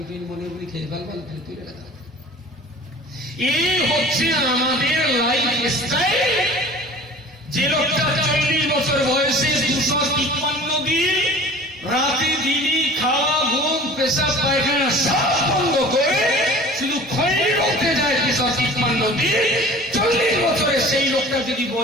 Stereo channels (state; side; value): normal; both; correlation 0.44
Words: টৈনি মনে মনে খেয়ে ফেলবেন, তুলে রাখা। এই হচ্ছে আমাদের লাইফ স্টাইল। যে লোকটা 40 বছর বয়সে 253 দিন রাতে দিনই খাওয়া, ঘুম, পেশাব, পায়খানা সব বন্ধ করে শুধু খৈনি রোতে যায় 253 দিন, 40 বছরে সেই লোকটা যদি